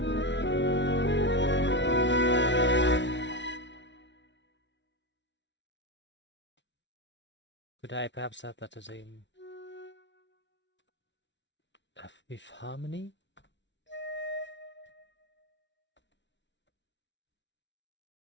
Could I perhaps have that as a fifth harmony?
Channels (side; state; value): right; late; 0.52 ms